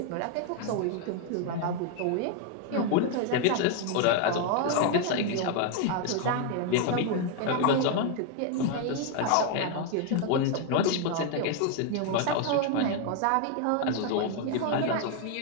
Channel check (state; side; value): different; both; correlation 0.01